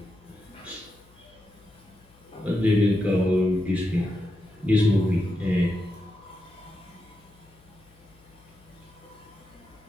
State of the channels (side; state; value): left; noise; hum, 28 dB below the sound